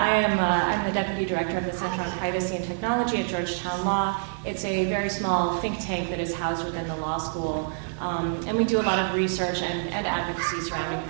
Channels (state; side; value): silent; left; 61 dB below the other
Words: the Deputy Director of the Center on Privacy and Technology at Georgetown Law. It's a very small think tank that is housed within the law school, and we do a lot of research and advocacy surrounding